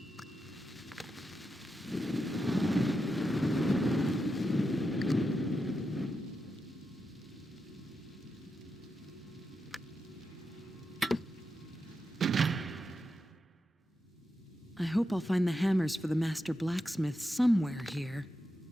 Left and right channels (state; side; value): normal; both; correlation 0.87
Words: I hope I'll find the hammers for the master blacksmith somewhere here.